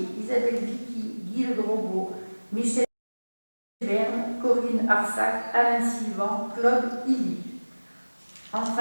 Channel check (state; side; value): inverted; both; correlation -1.00